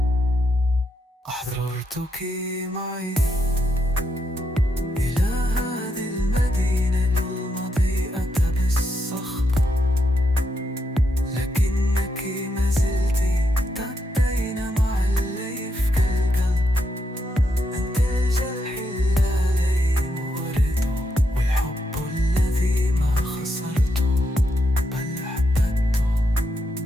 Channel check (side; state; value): both; normal; correlation 0.81